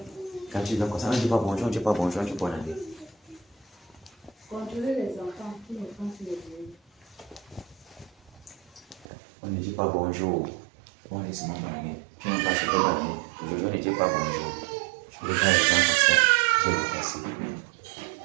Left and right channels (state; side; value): drops out; left; at 9.1 s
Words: Quand tu viens comme ça, on ne dit pas bonjour, on ne dit pas bonjour, on dit bonne année. Contrôler les enfants, tous les enfants sur les bureaux. On ne dit pas bonjour. On dit seulement bonne année. Tu n'as pas souhaité bonne année. Aujourd'hui, on ne dit pas bonjour. Je regarde les gens comme ça. Je le passe.